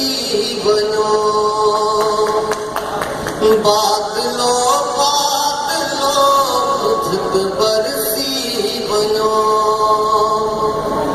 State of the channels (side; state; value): both; identical; correlation 1.00